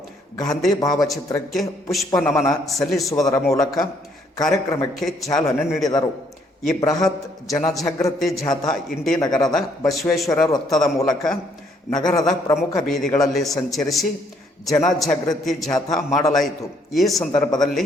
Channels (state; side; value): normal; both; correlation 0.67